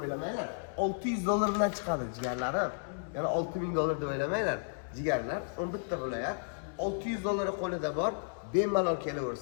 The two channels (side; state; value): right; silent; digital silence